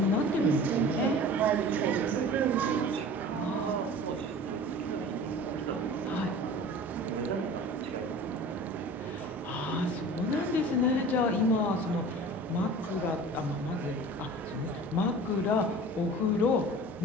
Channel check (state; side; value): normal; both; correlation 0.40